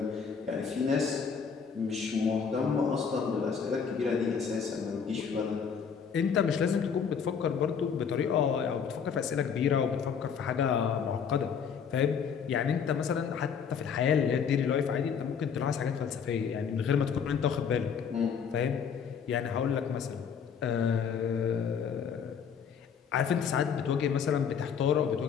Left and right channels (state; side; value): quieter; right; 6.8 dB